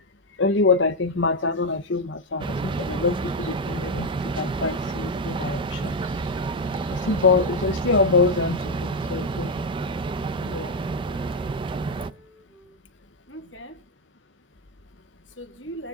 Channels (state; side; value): normal; both; correlation 0.04